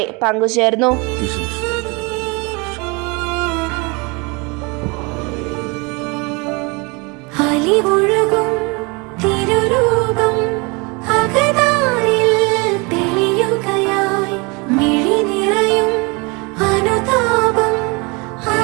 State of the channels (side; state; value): left; quieter; 28.6 dB